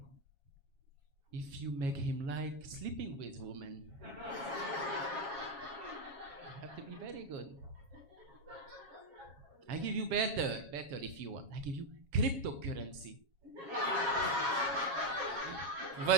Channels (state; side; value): late; left; 7.3 ms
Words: If you make him like sleeping with women. You have to be very good. I give you better if you want. I give you cryptocurrency.